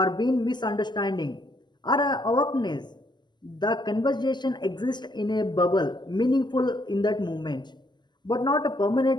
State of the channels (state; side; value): late; right; 0.21 ms